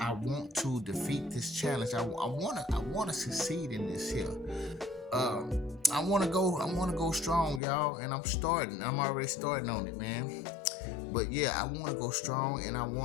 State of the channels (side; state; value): right; drops out; at 7.6 s